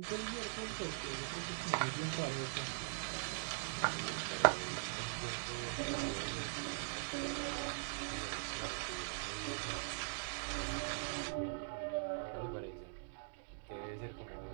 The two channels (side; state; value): left; silent; digital silence